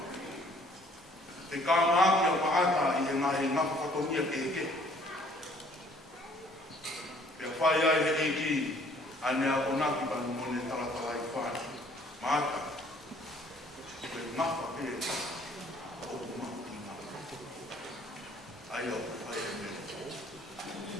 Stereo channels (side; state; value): both; normal; correlation 0.59